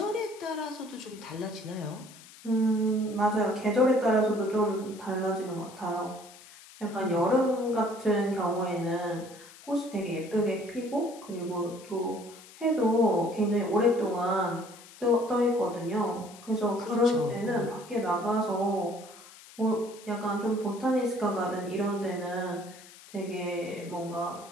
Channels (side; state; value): left; noise; hiss, 20 dB below the sound